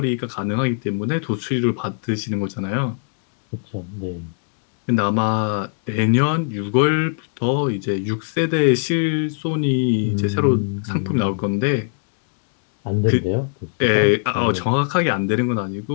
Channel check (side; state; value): right; silent; digital silence